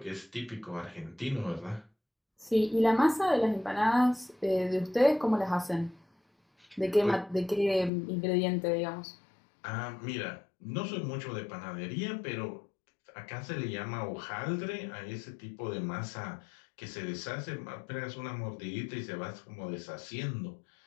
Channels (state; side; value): drops out; right; at 7.9 s